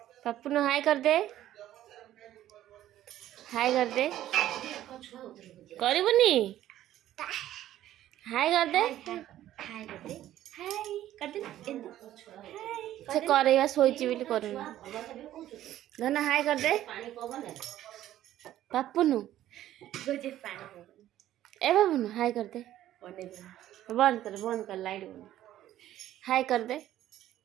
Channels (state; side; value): quieter; left; 13.0 dB